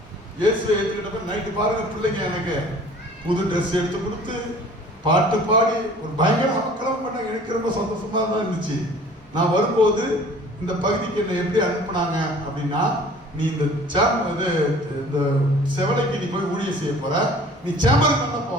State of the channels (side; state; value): both; normal; correlation 0.49